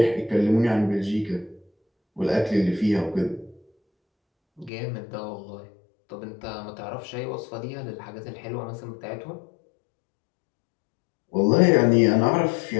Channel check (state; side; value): drops out; right; at 4.7 s